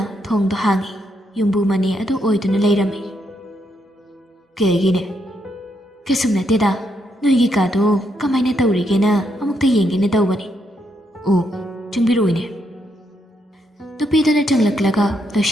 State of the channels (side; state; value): both; normal; correlation 0.78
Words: ꯊꯣꯡꯗꯣ ꯍꯥꯡꯉꯤ꯫ ꯌꯨꯝꯕꯨ ꯃꯅꯦ ꯑꯗꯨ ꯑꯣꯏꯗꯨꯅ ꯂꯩꯔꯝꯃꯤ꯫ ꯀꯩꯒꯤꯅꯦ? ꯀꯩꯁꯨꯝ ꯅꯠꯇꯦꯗ, ꯅꯣꯏꯒꯤ ꯀꯥꯗꯣ ꯀꯃꯥꯏꯅ ꯇꯧꯔꯤꯒꯦꯅ ꯑꯃꯨꯛꯇ ꯌꯦꯡꯒꯦꯅ ꯇꯧꯕꯅꯤ꯫ ꯑꯣ, ꯆꯪꯕꯤꯔꯛꯎꯅꯦ꯫ ꯅꯨꯄꯤꯗꯨꯅ ꯆꯪꯂꯛꯂꯒ